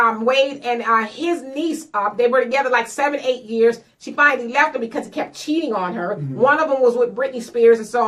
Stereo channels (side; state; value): both; identical; correlation 1.00